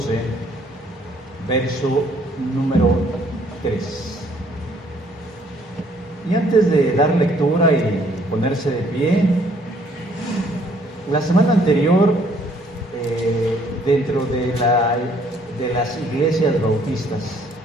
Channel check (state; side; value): normal; both; correlation 0.63